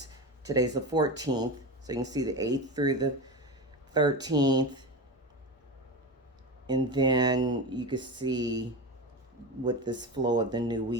today's the 14th. So you can see the 8th through the 13th. And then you can see what this flow of the new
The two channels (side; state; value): both; normal; correlation 0.23